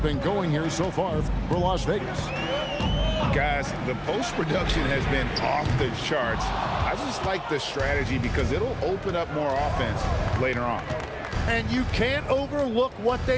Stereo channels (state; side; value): identical; both; correlation 1.00